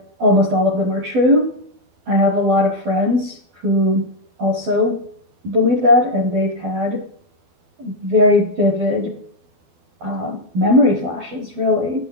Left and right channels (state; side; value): late; left; 12 ms